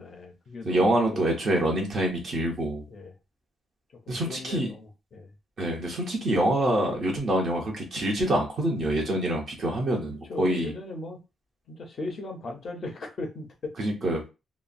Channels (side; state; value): both; normal; correlation 0.71